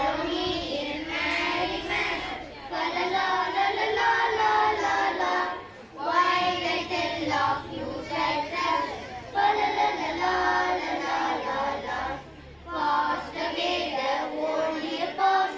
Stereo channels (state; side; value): identical; both; correlation 1.00